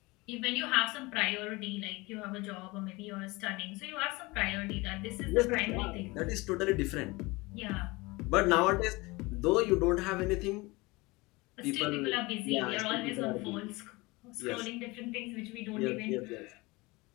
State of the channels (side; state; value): right; quieter; 23.4 dB